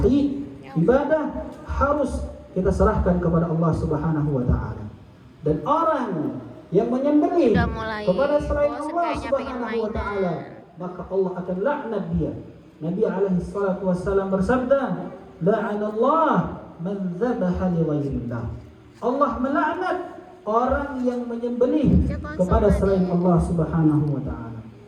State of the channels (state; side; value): identical; both; correlation 1.00